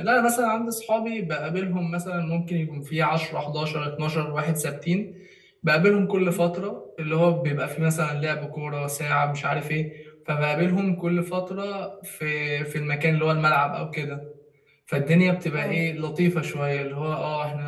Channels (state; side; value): identical; both; correlation 1.00